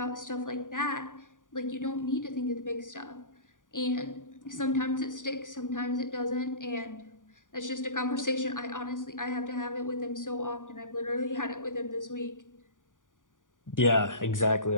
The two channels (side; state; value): right; late; 0.88 ms